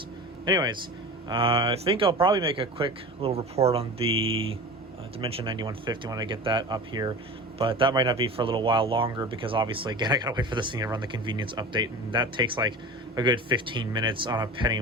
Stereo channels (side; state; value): both; normal; correlation 0.34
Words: Anyways, I think I'll probably make a quick little report on the Dimension 9150 when I get that up here. But that might not be for a little while longer, because obviously, again, I gotta wait for this thing to run the convenience update. And that takes like a good 15 minutes on a